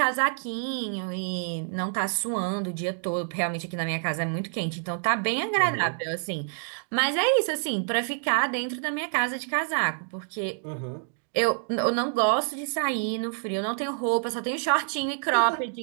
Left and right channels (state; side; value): silent; left; digital silence